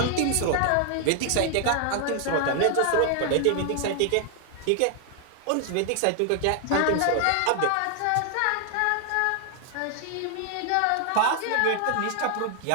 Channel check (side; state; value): both; different; correlation 0.00